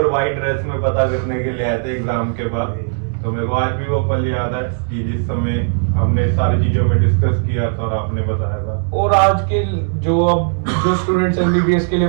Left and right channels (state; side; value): silent; left; 58 dB below the other